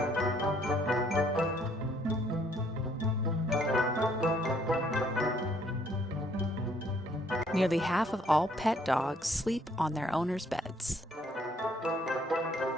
Nearly half of all pet dogs sleep on their owners' beds.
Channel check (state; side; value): normal; both; correlation 0.65